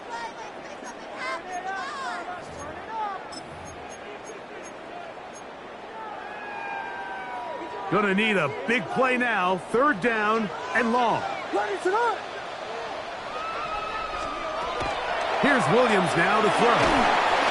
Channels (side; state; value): both; identical; correlation 1.00